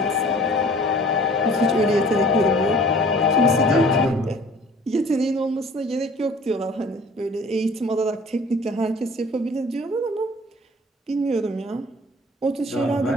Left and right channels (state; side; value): normal; both; correlation 0.49